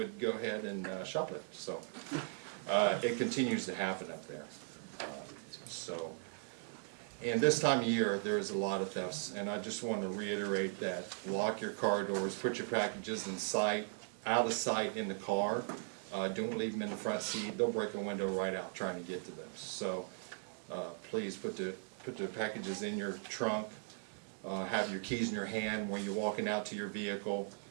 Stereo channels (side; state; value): left; silent; 52 dB below the other